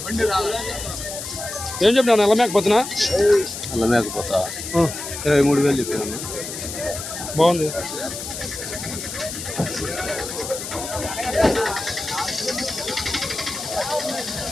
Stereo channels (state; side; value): noise; left; hiss, 8 dB below the sound